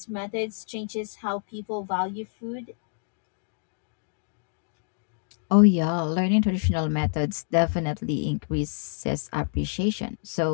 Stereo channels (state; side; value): silent; right; digital silence